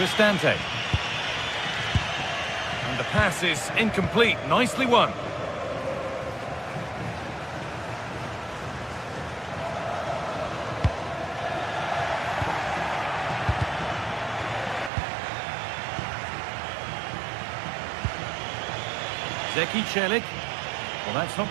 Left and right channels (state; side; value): drops out; left; at 14.9 s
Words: And the pass is incomplete. Nicely won. Zeki Celik. Well, that's